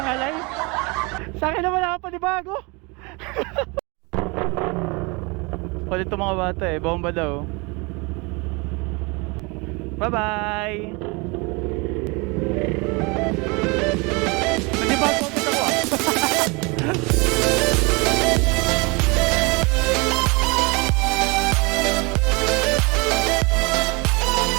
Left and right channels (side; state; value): left; quieter; 28.1 dB